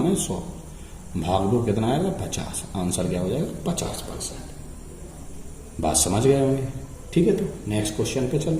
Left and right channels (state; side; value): identical; both; correlation 1.00